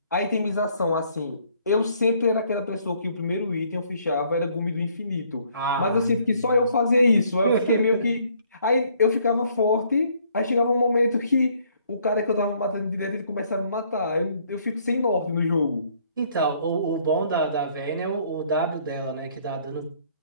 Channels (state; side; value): inverted; both; correlation -0.65